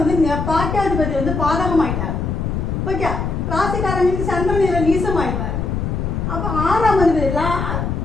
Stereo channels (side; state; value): left; noise; rumble, 2 dB below the sound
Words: பாக்கியாதிபதி வந்து பாதகம் ஆயிட்டார். ஓகே, ராசிக்காரங்களுக்கு சந்திரன் இதில் நீசம் ஆயிட்டார். அப்போ 6ஆம் அதிபதி